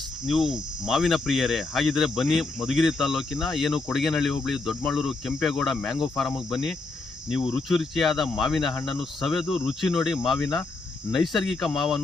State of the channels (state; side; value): quieter; right; 3.5 dB